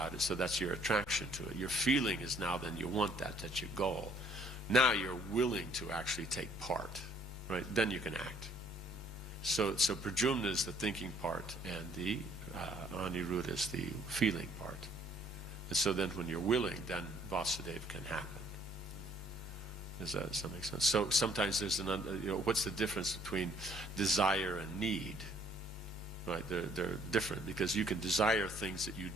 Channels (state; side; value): normal; both; correlation 0.62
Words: it, so that's your attraction to it. Your feeling is now then you want that's your goal. Now you're willing to actually take part, right? Then you can act. So Pradyumna is the thinking part, and the Aniruddha is the feeling part. And so then when you're willing, then Vasudeva can happen. Does that make sense? So sometimes there's what's the difference between desire and need? Right, they're different, because you can desire things that you